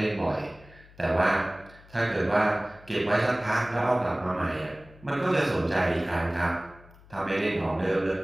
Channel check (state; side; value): noise; left; hum, 24 dB below the sound